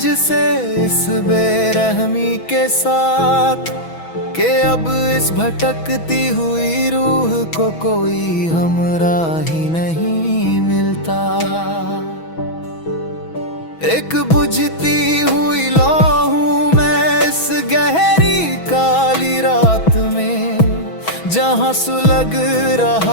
इस बेरहमी के साथ, कि अब इस भटकती हुई रूह को कोई हमराही नहीं मिलता। एक बुझती हुई लौ हूं मैं इस गहरी काली रात में, जहां सुलग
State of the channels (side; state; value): right; late; 6.1 ms